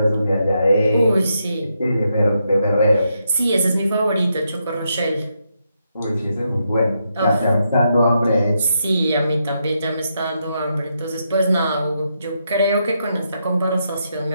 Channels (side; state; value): both; inverted; correlation -0.81